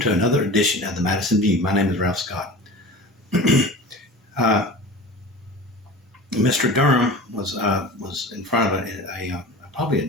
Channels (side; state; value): both; normal; correlation 0.36